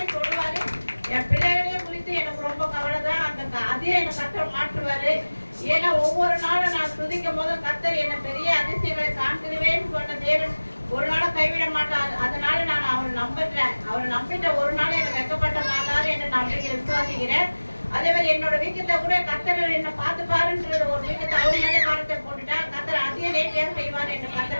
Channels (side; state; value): both; inverted; correlation -1.00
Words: சொல்லுவாரு. என் பிள்ளைகளையும் குறித்து எனக்கு ரொம்ப கவலை தான். அதையும் என்னை கர்த்தர் மாற்றுவாரு. ஏன்னா ஒவ்வொரு நாளும் நான் துதிக்கும் போது கர்த்தர் என்னை பெரிய அதிசயங்களை காண்கிறவேன்னு சொன்ன தேவன் ஒரு நாளும் கைவிட மாட்டார். அதனால நான் அவரை நம்புறேன். அவரை நம்பிட்ட ஒரு நாள் எனக்கு வெக்கப்பட்ட மாட்டாரு என்று நான் விசுவாசிக்கிறேன். அதே மாதிரி என்னோட வீக்கத்தை கூட கர்த்தர் என்ன பார்த்து பாருன்ற ஒரு வீக்கத்தை அவர் மேலே பாரத்தை போட்டுட்டா கர்த்தர் அதையும் நேர்த்தியாக செய்வார் என்று